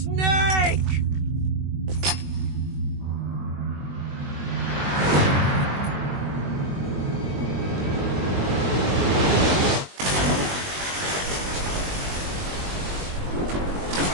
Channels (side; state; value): left; late; 21 ms